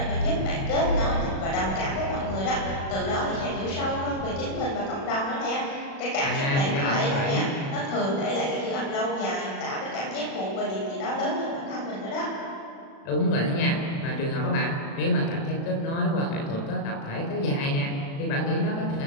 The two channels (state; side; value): late; right; 36 ms